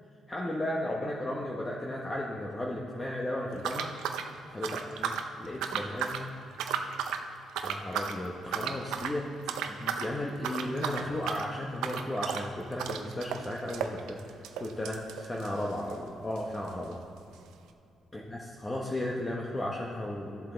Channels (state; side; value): normal; both; correlation 0.75